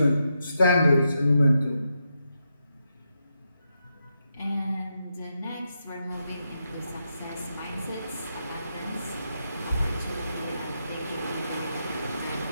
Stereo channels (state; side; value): inverted; both; correlation -0.84